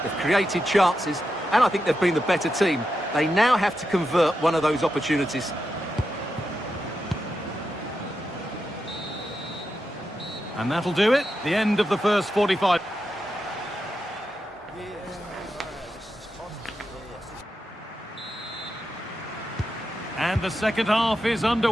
they've created chances, and I think they've been the better team. They now have to convert one of those opportunities. And that'll do it. The end of the first 45. And the second half is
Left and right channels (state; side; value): normal; both; correlation 0.87